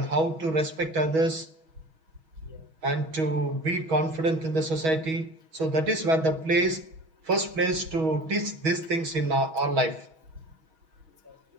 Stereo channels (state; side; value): late; left; 6.2 ms